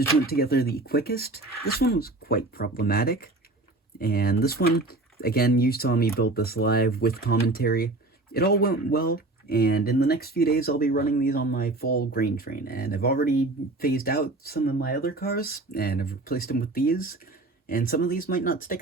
went together the quickest. This one was quite problematic. And this one, again, you saw me build this live with commentary. It all went well. And in the next few days, I'll be running these on my full grain train. And I've already phased out some of my other cars, and I've replaced them with these. And some of these might not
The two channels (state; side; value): quieter; left; 3.0 dB